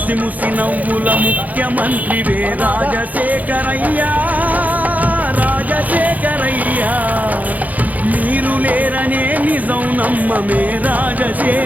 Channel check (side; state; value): left; late; 0.078 ms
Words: ముసి నవ్వుల ముఖ్యమంత్రివే రాజశేఖరయ్యా, రాజశేఖరయ్యా, మీరు లేరనే నిజం నమ్మమే